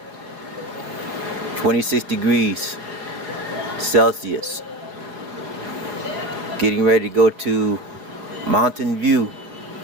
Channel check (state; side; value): late; left; 5.2 ms